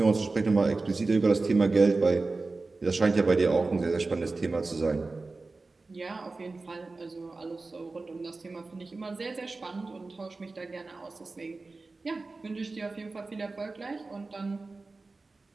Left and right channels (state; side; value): quieter; left; 3.6 dB